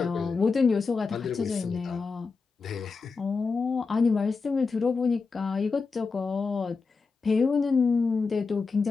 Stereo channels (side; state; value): right; quieter; 4.6 dB